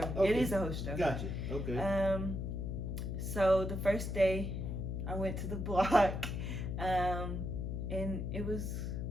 Okay. It is a host stroll. Gotcha. Okay. So the first day, I went to the block, and it was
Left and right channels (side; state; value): left; noise; hum, 3 dB below the sound